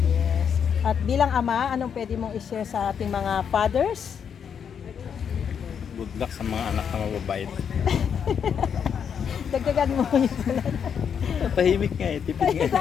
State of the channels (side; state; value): right; quieter; 7.5 dB